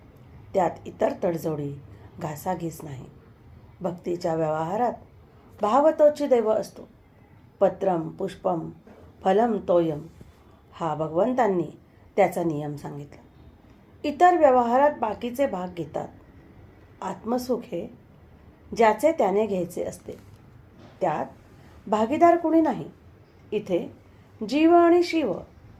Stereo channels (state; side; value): identical; both; correlation 1.00